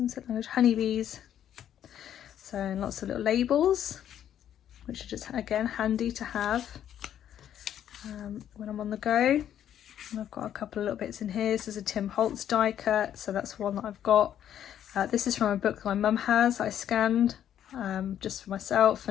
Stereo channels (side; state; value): right; quieter; 10.3 dB